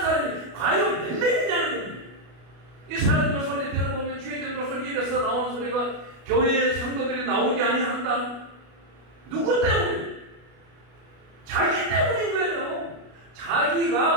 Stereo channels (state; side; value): late; left; 33 ms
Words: 과연 몇 명이냐는 겁니다. 이 사람들 소리 들어보면 주의되는 소리 입에서 나오는 소리가 교회의 성도들이 나오지 아니한다. 누구 때문에? 자기 때문인 거예요.